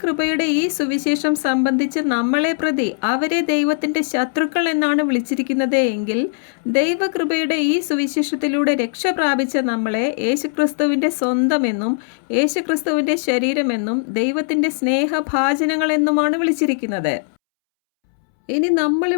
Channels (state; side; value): silent; right; 66 dB below the other